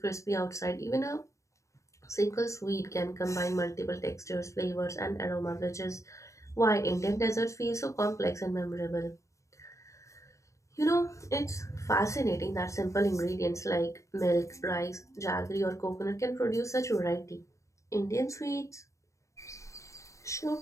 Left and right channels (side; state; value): right; late; 0.15 ms